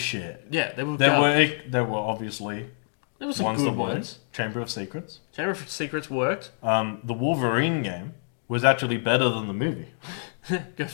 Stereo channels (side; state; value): right; silent; digital silence